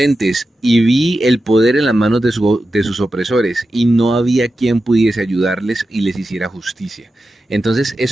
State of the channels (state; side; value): normal; both; correlation 0.91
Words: y vi el poder en las manos de sus opresores y no había quien pudiese ayudarles y les hiciera justicia. Entonces